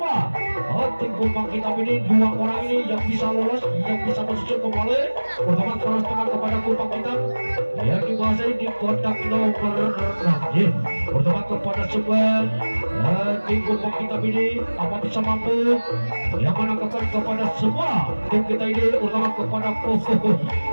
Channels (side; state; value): both; inverted; correlation -1.00